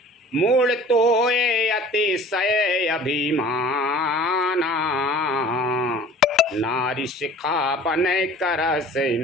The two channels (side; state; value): both; normal; correlation 0.46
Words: मूल तो ये अतिशय अभिमाना, नारी शिखा बन कर से